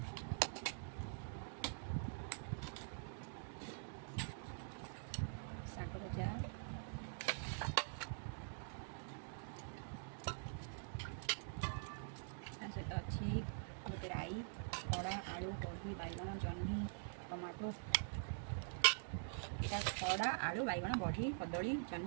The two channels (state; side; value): silent; left; digital silence